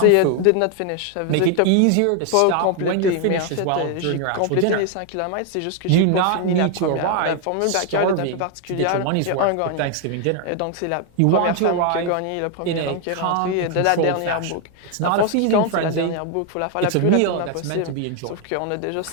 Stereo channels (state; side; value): different; both; correlation 0.01